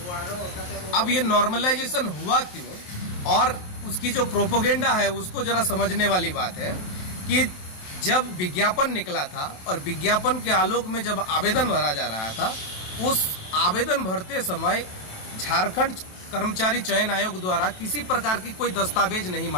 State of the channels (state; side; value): late; right; 28 ms